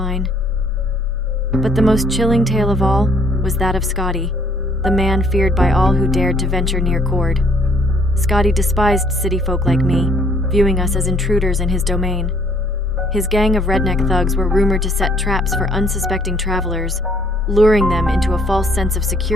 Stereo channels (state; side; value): normal; both; correlation 0.63